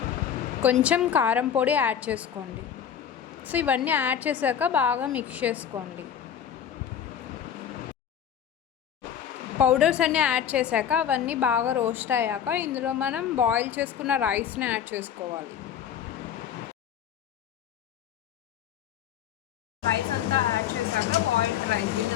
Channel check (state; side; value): quieter; right; 8.9 dB